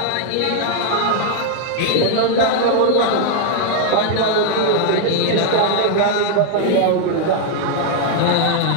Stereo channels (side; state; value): both; different; correlation 0.00